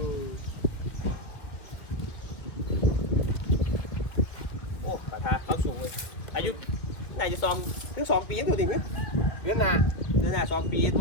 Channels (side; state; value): right; late; 1.9 ms